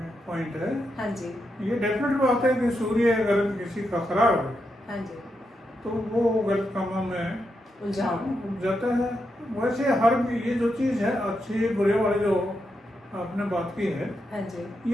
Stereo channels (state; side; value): normal; both; correlation 0.84